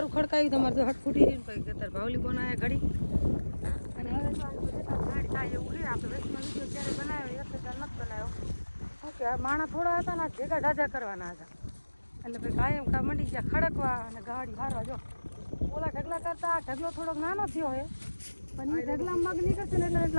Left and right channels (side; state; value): both; inverted; correlation -1.00